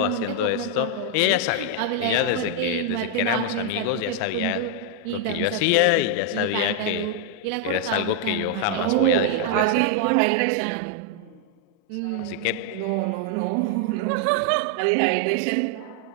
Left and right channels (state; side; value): different; both; correlation 0.00